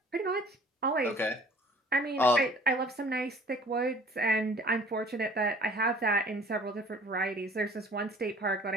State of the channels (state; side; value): normal; both; correlation 0.51